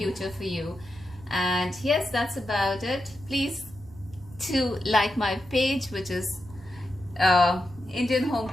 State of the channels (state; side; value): noise; right; rumble, 19 dB below the sound